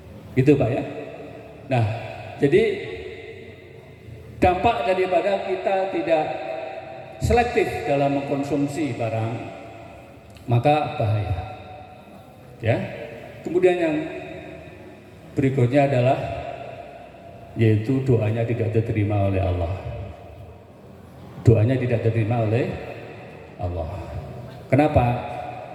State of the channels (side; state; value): both; identical; correlation 1.00